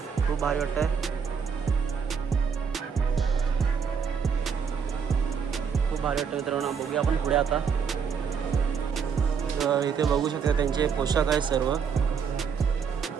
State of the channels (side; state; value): left; quieter; 6.5 dB